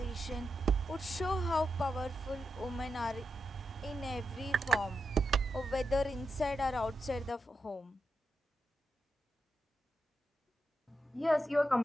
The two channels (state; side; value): normal; both; correlation 0.87